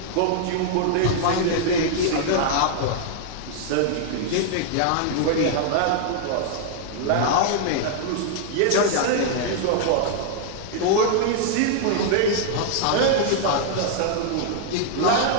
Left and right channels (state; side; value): different; both; correlation -0.01